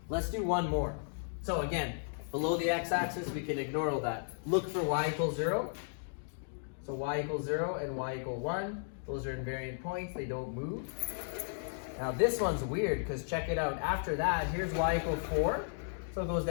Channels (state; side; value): silent; right; digital silence